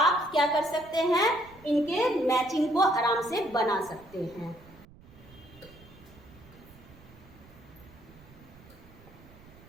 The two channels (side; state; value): right; noise; rumble, 22 dB below the sound